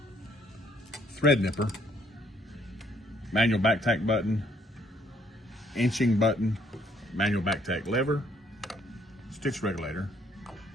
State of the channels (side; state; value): both; normal; correlation 0.66